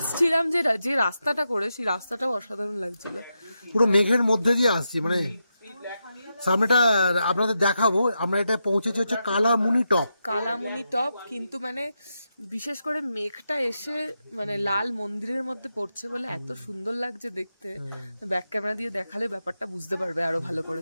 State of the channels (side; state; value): both; inverted; correlation -0.87